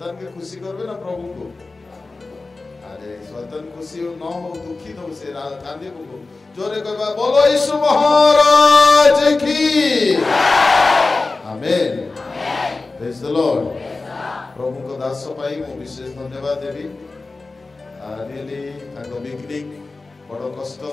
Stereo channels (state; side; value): quieter; right; 3.6 dB